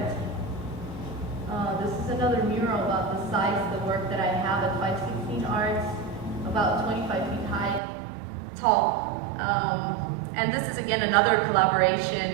This is another mural about the size of the work that I have at 516 Arts, about 25 feet high, tall. And this is again another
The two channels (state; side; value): drops out; left; at 7.8 s